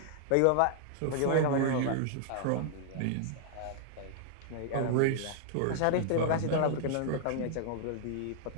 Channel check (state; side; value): different; both; correlation -0.01